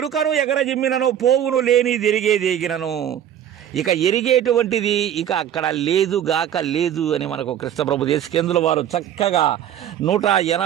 ఎగరజిమ్మినను పోవును లేని ఎరిగేదేగినను. ఇక ఎరిగేటువంటిది ఇక అక్కడ లేదు గాక లేదు అని మనకు కృష్ణప్రభు దేశికేంద్రుల వారు చక్కగా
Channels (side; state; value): left; quieter; 10.3 dB